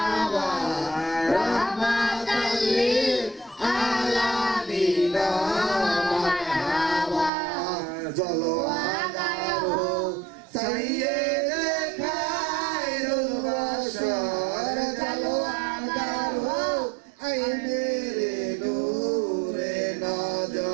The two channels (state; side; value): drops out; left; at 7.3 s